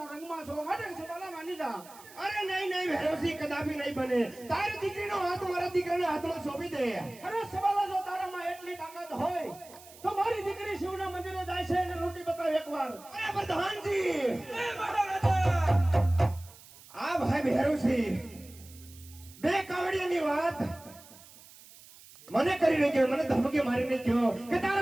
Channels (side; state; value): right; noise; hiss, 21 dB below the sound